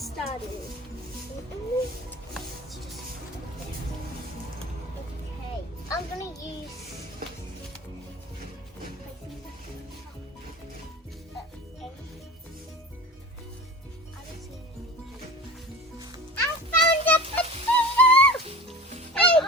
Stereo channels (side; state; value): both; normal; correlation 0.36